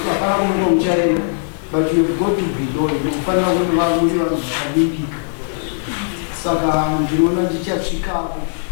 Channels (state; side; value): silent; right; digital silence